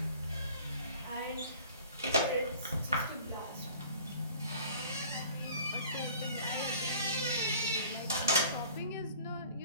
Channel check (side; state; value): both; inverted; correlation -0.48